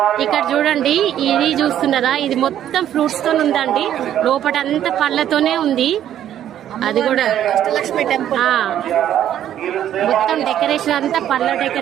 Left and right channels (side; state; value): left; quieter; 10.9 dB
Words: ఇక్కడ చూడండి, ఇది చూస్తున్నారా, ఇది మొత్తం ఫ్రూట్స్ తో ఉందండి. లోపల అంతా పళ్ళతోనే ఉంది. అది కూడా అష్టలక్ష్మి టెంపుల్ మొత్తం డెకరేషన్ అంతా పళ్ళ